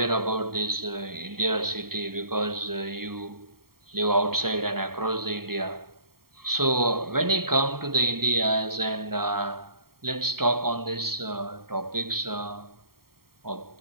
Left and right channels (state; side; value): late; left; 0.93 ms